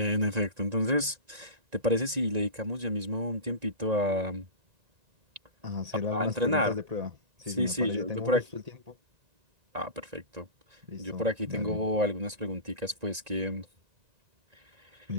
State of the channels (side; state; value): left; late; 1.9 ms